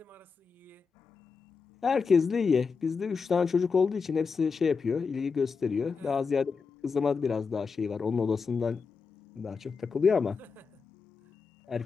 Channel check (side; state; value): right; quieter; 5.2 dB